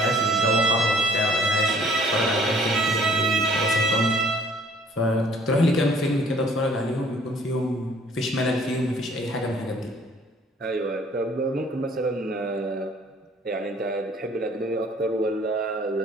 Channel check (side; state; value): both; normal; correlation 0.57